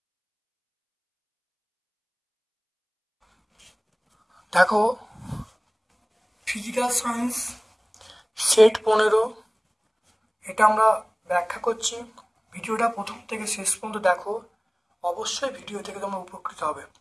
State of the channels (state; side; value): identical; both; correlation 1.00